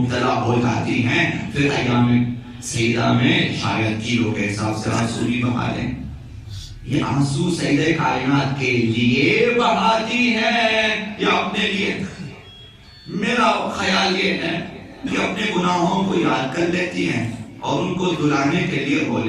ہو جاتی ہیں، پھر ایام سیدہ میں شاید کلو کے حساب سے آنسو بھی بہا دیں. یہ آنسو سیدہ کائنات کے لیے بہاتی ہیں یا اپنے لیے؟ میرا خیال یہ ہے کہ اپنے گناہوں کو یاد کر لیتی ہیں اور ان کو دلانے کے لیے رو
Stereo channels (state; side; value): identical; both; correlation 1.00